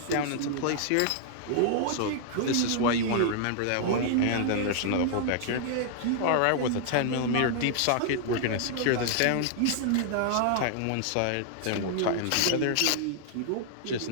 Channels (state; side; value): different; both; correlation -0.01